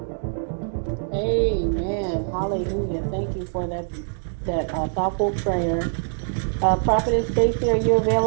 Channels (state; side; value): silent; left; digital silence